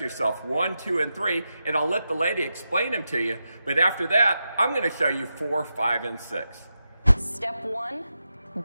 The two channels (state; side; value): inverted; both; correlation -0.88